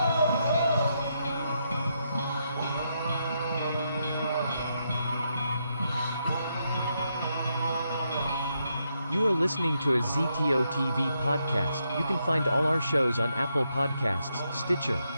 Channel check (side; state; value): both; inverted; correlation -0.80